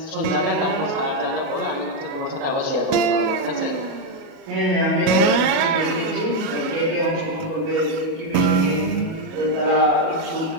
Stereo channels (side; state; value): left; late; 37 ms